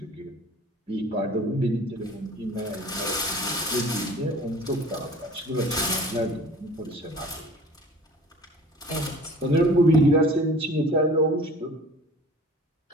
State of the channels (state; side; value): normal; both; correlation 0.46